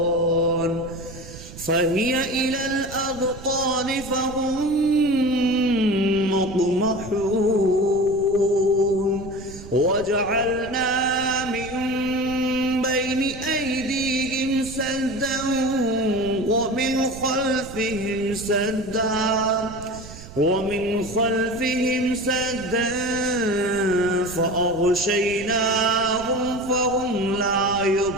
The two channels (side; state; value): right; noise; rumble, 15 dB below the sound